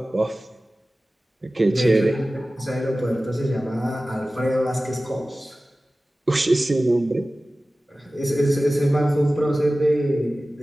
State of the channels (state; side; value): normal; both; correlation 0.96